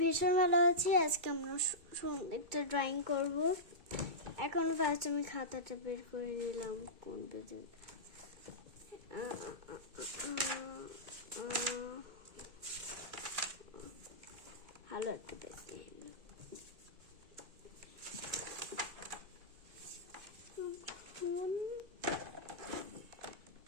ভীষণ ভালো আছি। আজকে আমরা একটা ড্রয়িং করব। এখন ফার্স্ট আমি খাতাটা বের করে নিলাম। কোন পেজে? ভালো একটা পেজ নিয়ে নিলাম।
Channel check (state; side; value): late; left; 2.4 ms